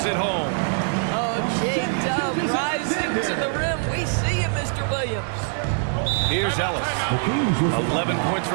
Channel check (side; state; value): left; silent; 56 dB below the other